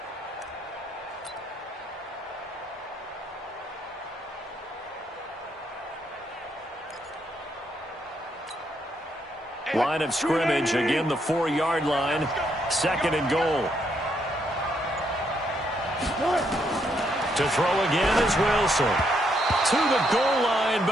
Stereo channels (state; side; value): normal; both; correlation 0.75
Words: Line of scrimmage, again the 4-yard line, 2nd and goal. To throw again is Wilson. To the goal line,